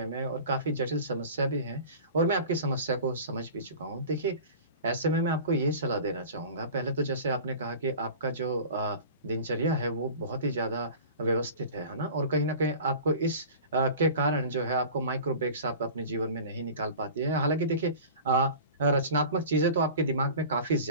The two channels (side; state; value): both; inverted; correlation -0.39